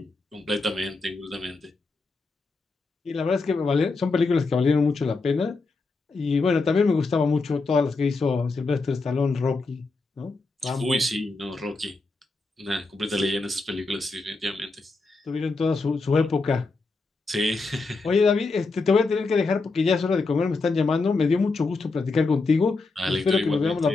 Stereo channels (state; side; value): quieter; right; 3.8 dB